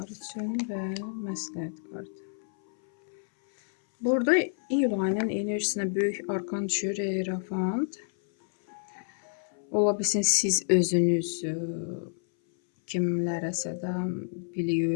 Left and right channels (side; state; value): right; silent; 58 dB below the other